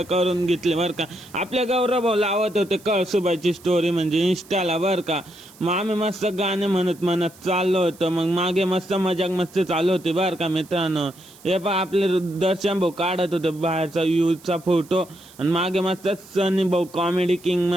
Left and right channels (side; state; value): right; noise; hiss, 24 dB below the sound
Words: करून घेतली बर का. आपले गौरव भाऊ लावत होते कळसुबाईची स्टोरी म्हणजे इंस्टाला बर का. मग आम्ही मस्त गाणे म्हणत चाललो होतो. मग मागे मस्त मजाक मस्ती चालू होती बर का मित्रांनो. हे पहा आपले दर्शन भाऊ काढत होते बाहेरचा व्ह्यूचा फोटो आणि मागे मस्त सनी भाऊ कॉमेडी किंग